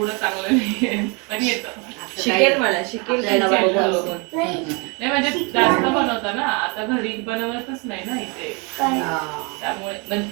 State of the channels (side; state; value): left; quieter; 31.6 dB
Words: चांगलं नाही पण येतं। शिकेल मला शिकेल नाही म्हणजे जास्त बनवता ना, आता घरी बनवतच नाही ना इथे, त्यामुळे